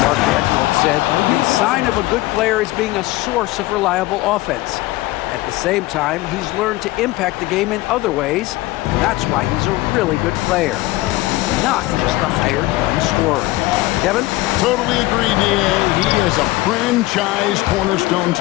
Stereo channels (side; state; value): right; quieter; 18.7 dB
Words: Mark Daigneault said the sign of a good player is being a source of reliable offense. At the same time, he's learned to impact the game in other ways, and that's why he's a really good player. He's not just a hired gun scorer. Kevin? Totally agree, D.A. He is a franchise cornerstone